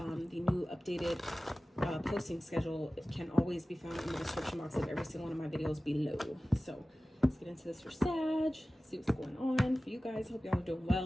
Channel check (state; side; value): normal; both; correlation 0.96